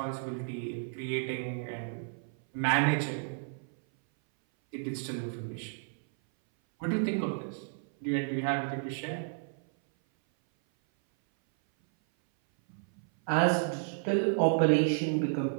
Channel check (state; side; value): silent; left; 57 dB below the other